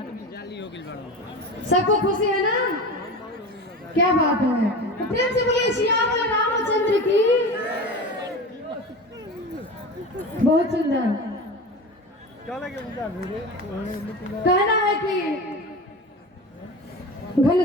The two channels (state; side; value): normal; both; correlation 0.30